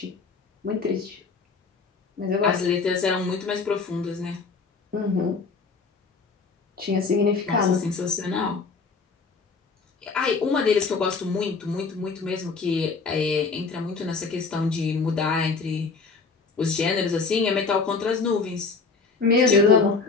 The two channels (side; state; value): right; quieter; 4.6 dB